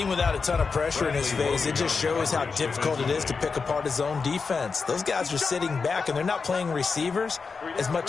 without a ton of pressure in his face, it just shows how difficult it is to pick apart his own defense. Those guys are sitting back, and they're not playing receivers as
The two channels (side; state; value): right; quieter; 4.9 dB